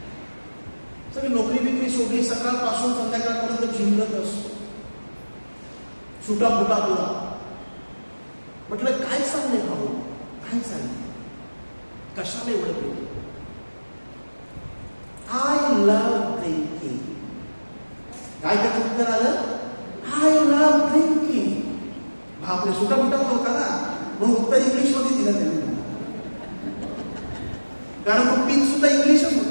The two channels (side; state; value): both; inverted; correlation -1.00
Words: सगळी नोकरी बिकरी सोडली, सकाळपासून संध्याकाळपर्यंत झिंगत असतो, सुटा फुटा तुला. म्हटलं काय चाललंय भाऊ, काय चाललंय, कशाला एवढं पेलं? I love drinking. काय त्याचं उत्तर आलं? I love drinking. बापरे, सुटा फुटा होता ना, म्हणून उत्तर इंग्लिश मध्ये दिलं त्यांनी, कारण तो पिन सुद्धा इंग्लिशच